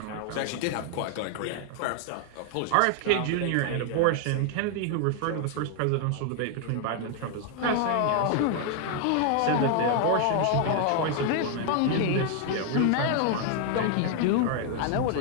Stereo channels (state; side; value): different; both; correlation 0.00